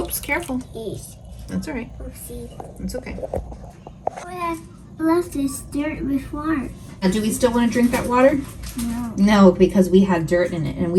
careful. Yes. That's all right. Oopsie. It's okay. We have left this dirt with water. Now, do we still want to drink that water? No. No, because we had dirt in it and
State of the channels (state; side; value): identical; both; correlation 1.00